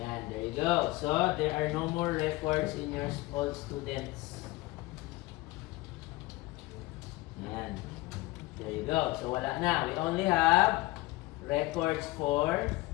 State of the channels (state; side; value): quieter; right; 20.1 dB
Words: there you go. So there are no more records in your all students. Ayan, there you go. So wala na. We only have records for